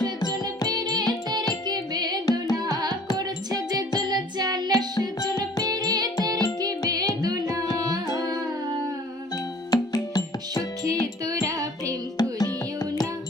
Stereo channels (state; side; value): normal; both; correlation 0.51